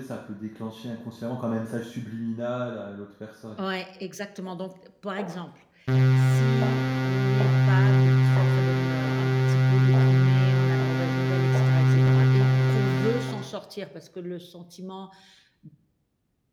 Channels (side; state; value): both; identical; correlation 1.00